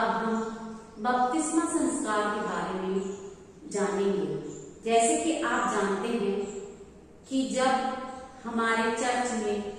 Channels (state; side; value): identical; both; correlation 1.00